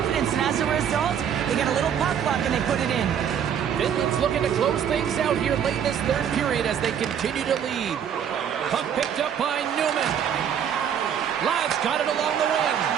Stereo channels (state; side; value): quieter; left; 8.6 dB